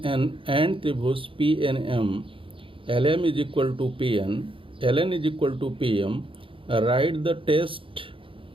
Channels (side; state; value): left; late; 0.25 ms